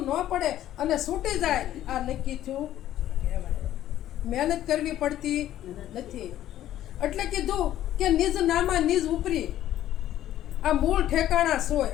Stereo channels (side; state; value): right; quieter; 12.7 dB